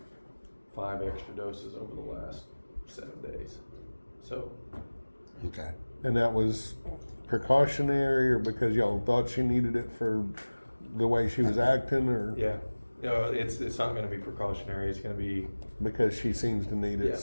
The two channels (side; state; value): both; inverted; correlation -1.00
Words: 5 extra doses over the last 7 days. So Okay. And that was precautionary, or because y'all thought she needed it for the way she was acting, or yeah, it's not going to be precautionary. It's going to be because she seems to need it, Yeah.